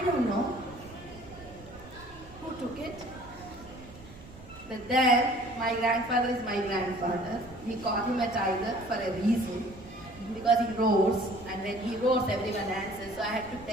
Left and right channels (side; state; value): right; noise; rumble, 19 dB below the sound